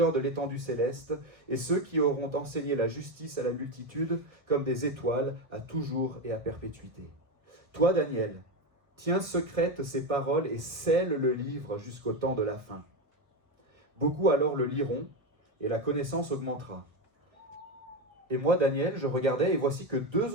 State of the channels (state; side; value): late; left; 1.1 ms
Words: de l'étendue céleste, et ceux qui auront enseigné la justice à la multitude comme des étoiles à toujours et à perpétuité. Toi, Daniel, tiens secrètes ces paroles et scelle le livre jusqu'au temps de la fin. Beaucoup alors le liront, et la connaissance augmentera. Et moi, Daniel, je regardais, et voici que 2